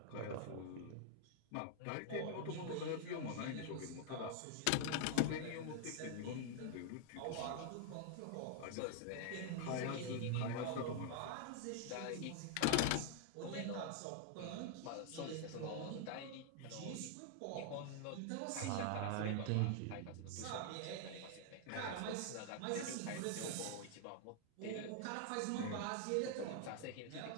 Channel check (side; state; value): both; different; correlation -0.01